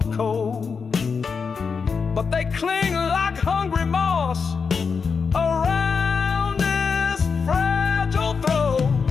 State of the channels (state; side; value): quieter; right; 5.5 dB